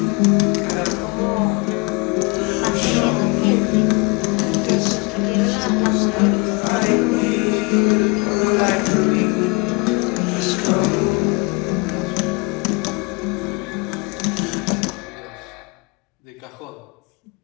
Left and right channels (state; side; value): quieter; right; 29.4 dB